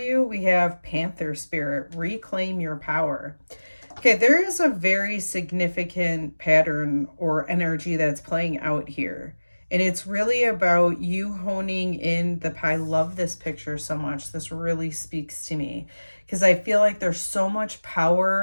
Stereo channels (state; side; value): inverted; both; correlation -1.00